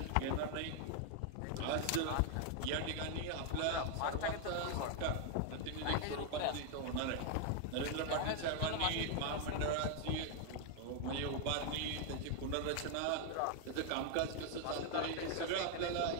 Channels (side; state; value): both; different; correlation 0.00